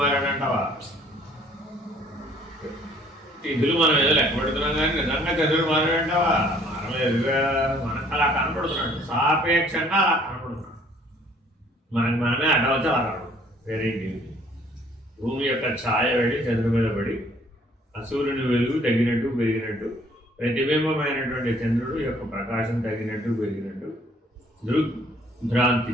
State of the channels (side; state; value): both; normal; correlation 0.59